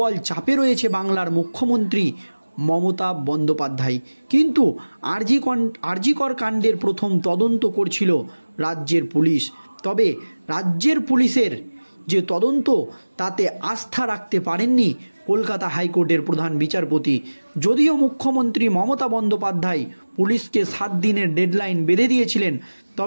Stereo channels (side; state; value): both; inverted; correlation -1.00